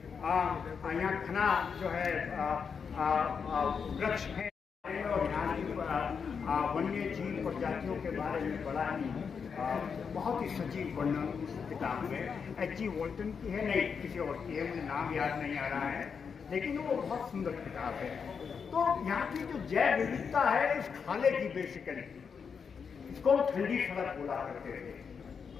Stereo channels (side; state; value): right; quieter; 6.2 dB